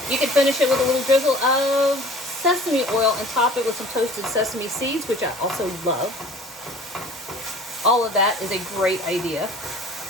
you could finish it with a little drizzle of sesame oil and top it with some toasted sesame seeds, which I also love. All of that is a great idea.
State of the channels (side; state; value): both; normal; correlation 0.47